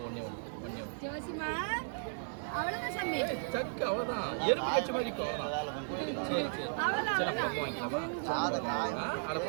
ஒண்ணே ஒண்ணு ஜோசிமா அவ்வளவுதான் சாமி சக்கு அவ்வளவுதான் எறும்பு கட்சி மாதிரி சரி சரி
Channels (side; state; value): left; silent; 54 dB below the other